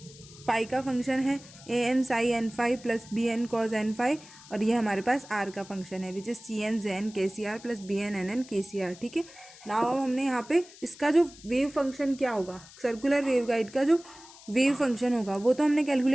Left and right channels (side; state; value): left; noise; hiss, 20 dB below the sound